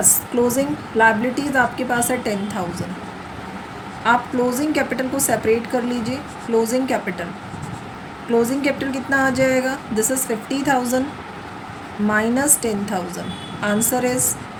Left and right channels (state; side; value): identical; both; correlation 1.00